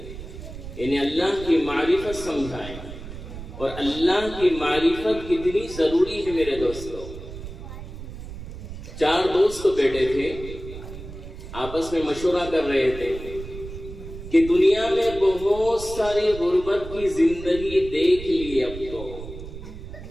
انہیں اللہ کی معرفت سمجھائیں. اور اللہ کی معرفت کتنی ضروری ہے میرے دوستوں. 4 دوست بیٹھے تھے، آپس میں مشورہ کر رہے تھے کہ دنیا میں بہت ساری غربت کی زندگی دیکھ لی.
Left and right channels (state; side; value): noise; right; rumble, 11 dB below the sound